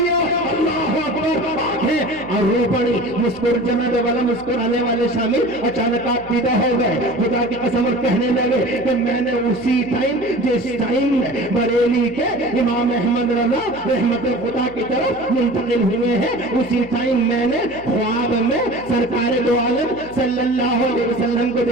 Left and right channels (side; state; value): left; noise; hum, 22 dB below the sound